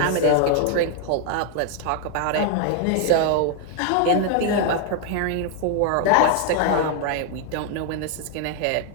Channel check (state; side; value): different; both; correlation 0.00